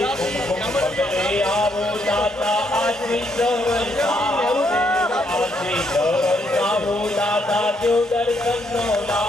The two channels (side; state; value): both; normal; correlation 0.74